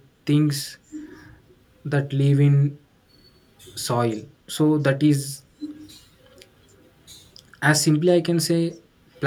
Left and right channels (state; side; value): identical; both; correlation 1.00